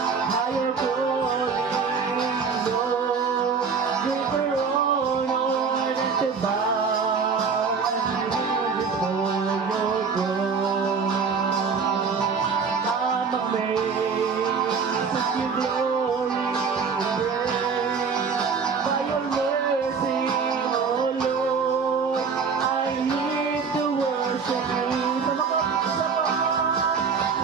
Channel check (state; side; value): quieter; left; 5.5 dB